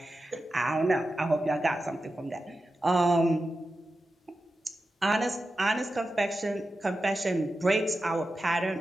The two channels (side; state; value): both; normal; correlation 0.92